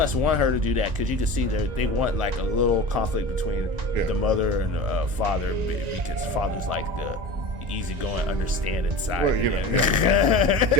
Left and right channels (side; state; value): left; late; 1.9 ms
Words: want her to do that because you can see they want like a little conflict between the mother and the father, because father's like the easygoing, understanding side. Well,